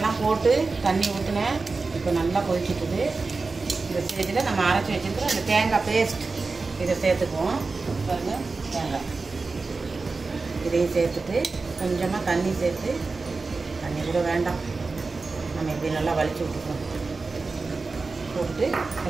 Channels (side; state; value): left; quieter; 4.0 dB